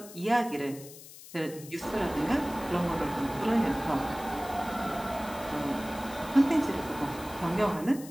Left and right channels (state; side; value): noise; left; hiss, 17 dB below the sound